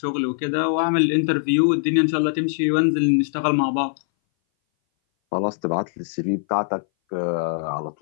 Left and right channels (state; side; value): silent; right; 60 dB below the other